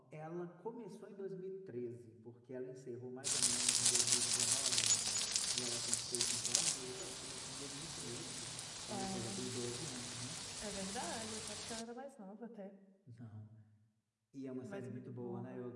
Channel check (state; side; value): identical; both; correlation 1.00